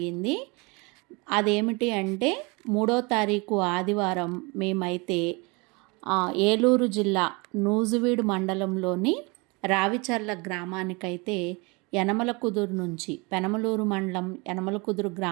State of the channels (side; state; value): left; quieter; 28.0 dB